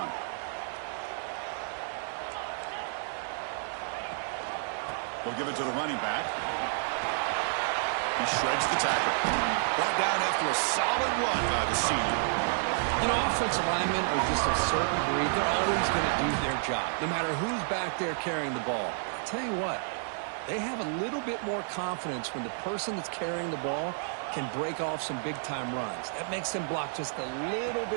We'll give it to the running back. He shreds the tackle. Brought down after a solid run by the senior. You know, offensive linemen are just a certain breed. They're always going to do their job, no matter who's back there carrying the ball. I'll tell you what, they have a little bit more confidence when the person that's carrying the ball can break off some big-time runs. That makes them block just a little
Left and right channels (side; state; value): left; silent; 57 dB below the other